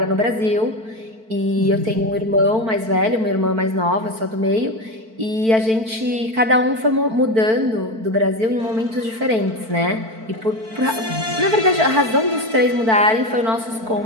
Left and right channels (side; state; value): left; late; 4.5 ms